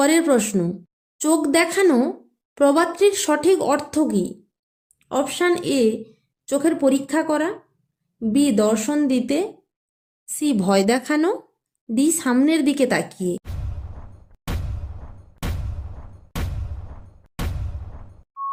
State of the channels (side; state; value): both; identical; correlation 1.00